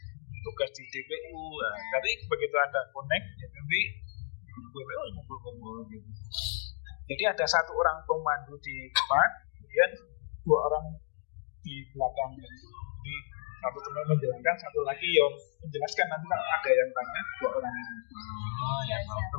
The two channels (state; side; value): silent; right; digital silence